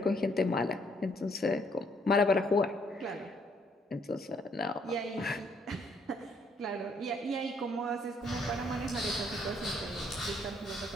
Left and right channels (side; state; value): both; normal; correlation 0.68